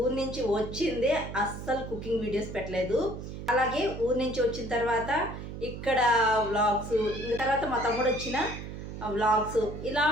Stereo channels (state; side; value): noise; right; hum, 9 dB below the sound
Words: నుంచి వచ్చిందే అస్సలు కుకింగ్ వీడియోస్ పెట్టలేదు. అలాగే ఊరి నుంచి వచ్చిన తర్వాత ఇక్కడ వ్లాగ్స్, ఇంకా తర్వాత మా తమ్ముడు వచ్చిన వ్లాగ్స్ ఇలా